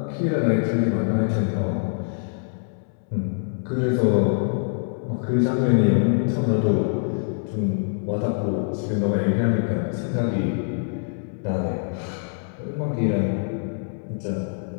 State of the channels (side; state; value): right; silent; digital silence